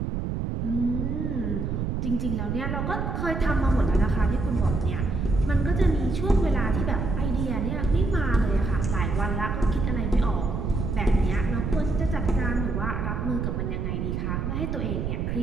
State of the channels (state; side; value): noise; right; rumble, 2 dB below the sound